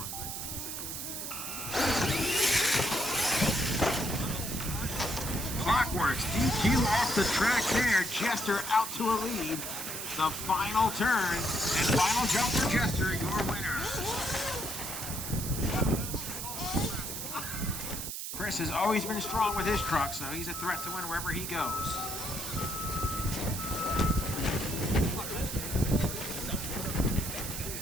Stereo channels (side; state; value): right; noise; hiss, 5 dB below the sound